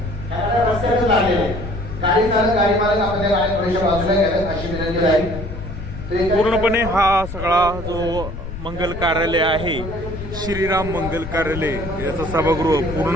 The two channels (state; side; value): noise; left; rumble, 9 dB below the sound